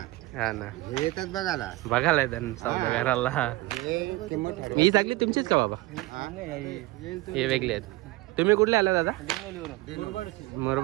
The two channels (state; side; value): quieter; left; 20.0 dB